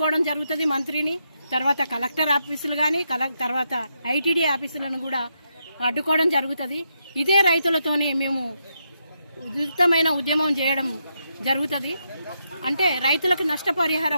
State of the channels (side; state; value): both; inverted; correlation -0.82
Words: జరుగుతుంది మంత్రిని, తర్వాత కలెక్టర్ ఆఫీసులు కానీ తర్వాత ఐటీడీ ఆఫీసులను కూడా అడ్డుకోవడం జరుగుతుంది. ఇదే రైతులతోనే మేము ఉధృతమైన ఉద్యమం చేయడం జరుగుతుంది. అంటే రైతులకు